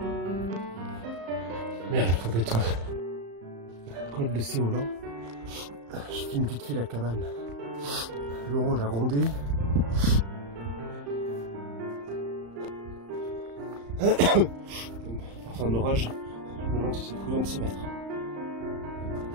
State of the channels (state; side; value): late; left; 35 ms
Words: Merde, faut être col de Séolan. Je filme vite fait la cabane. L'orange a grondé. Enfin d'orage, je me demande si c'est prudent de s'y mettre.